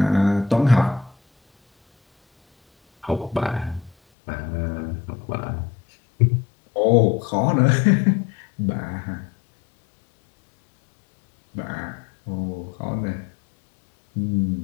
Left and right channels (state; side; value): drops out; right; at 4.0 s